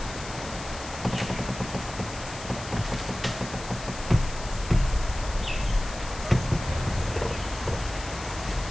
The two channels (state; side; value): noise; left; hiss, 13 dB below the sound